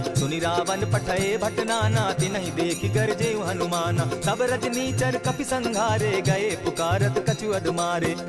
सुनि रावण पठए भट नाना तिनहि देखि गरजे हनुमाना। सब रजनीचर कपि संघारे गए पुकारत कछु अदमारे।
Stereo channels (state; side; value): identical; both; correlation 1.00